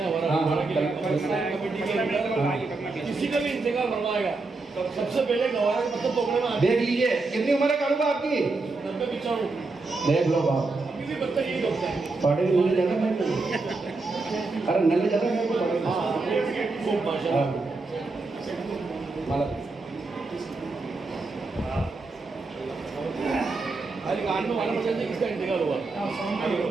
ہیں ہمارا کسی کا بھی انتقال بنوائے گا. سب سے پہلے گوارا کے پتھر توڑنے میں دیکھ لیجیے کتنی عمر ہے کالوبا آپ کی. 90-95. دیکھ لو باپ. ابھی بھی بچہ یہی ہوتا ہے. پڑھے نلے جانا ہے. ارے نلے جانا ہے خوب ماشاءاللہ. مالا ابھی کان میں والا بچہ کس کا انتقال ہوا.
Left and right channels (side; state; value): left; quieter; 3.6 dB